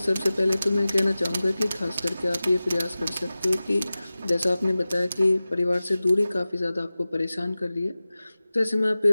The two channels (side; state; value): both; inverted; correlation -0.97